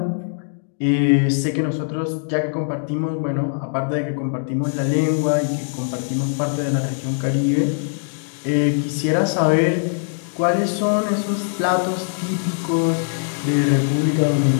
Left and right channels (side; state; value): right; silent; digital silence